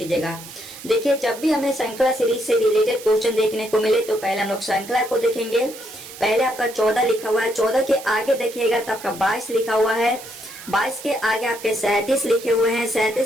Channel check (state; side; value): noise; right; hiss, 15 dB below the sound